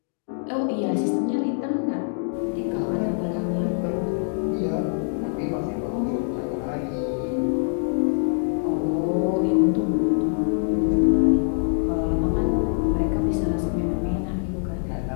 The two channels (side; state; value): right; silent; digital silence